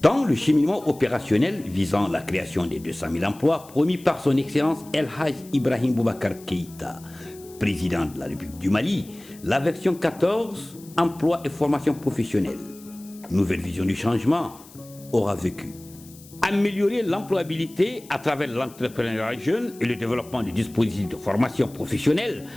Dans le cheminement opérationnel visant la création des 200 000 emplois promis par son Excellence El Hadj Ibrahim Boubacar Keïta, président de la République du Mali, la version 14, emploi et formation professionnelle, nouvelle vision du changement, aura vécu. Améliorer l'employabilité à travers l'entrepreneuriat jeune et le développement des dispositifs de formation professionnelle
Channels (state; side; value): noise; left; hiss, 22 dB below the sound